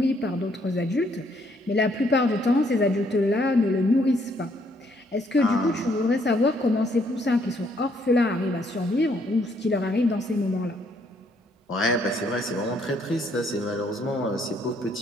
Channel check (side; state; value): both; normal; correlation 0.69